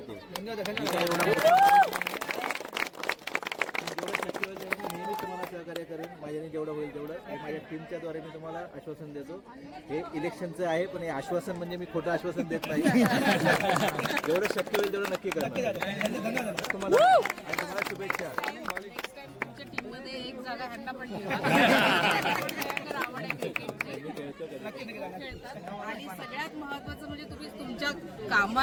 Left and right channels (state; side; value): identical; both; correlation 1.00